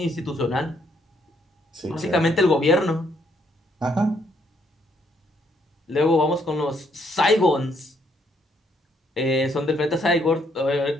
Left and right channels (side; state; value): both; normal; correlation 0.71